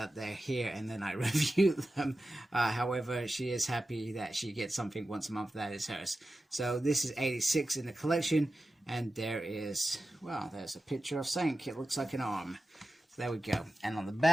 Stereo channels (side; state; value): both; normal; correlation 0.93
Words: they're here and then I review them. However, she is happy that she gets something once a month that is hers. So this is 86 in the collection, and there is, well, there's a picture of Sank. It looks like an arm. So there we go. And on the